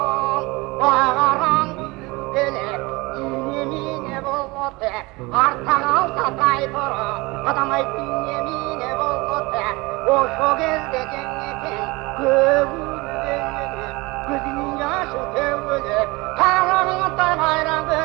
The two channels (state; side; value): quieter; left; 23.9 dB